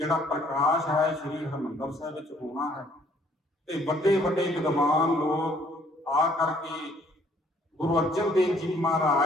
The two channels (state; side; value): normal; both; correlation 0.63